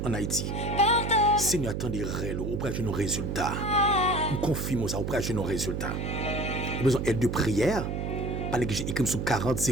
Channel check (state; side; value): noise; right; hum, 2 dB below the sound